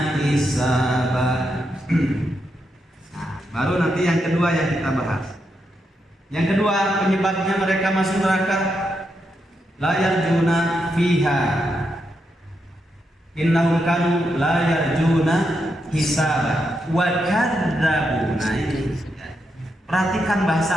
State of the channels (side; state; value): both; normal; correlation 0.83